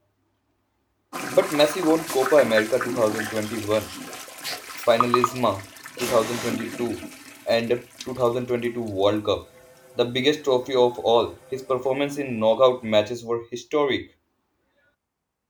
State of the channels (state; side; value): identical; both; correlation 1.00